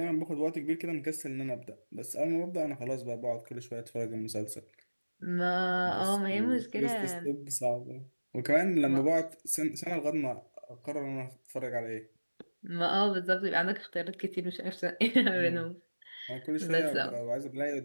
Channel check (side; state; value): both; inverted; correlation -1.00